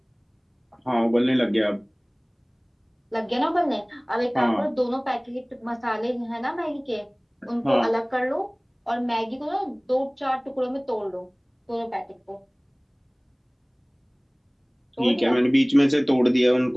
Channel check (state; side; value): identical; both; correlation 1.00